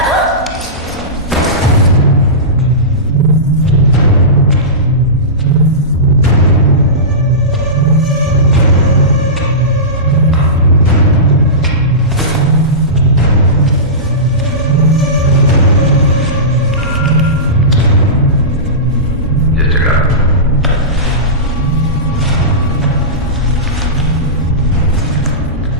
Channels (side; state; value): both; normal; correlation -0.20